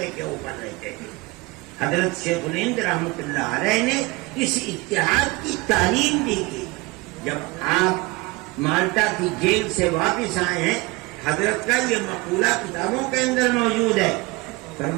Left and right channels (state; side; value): quieter; left; 23.4 dB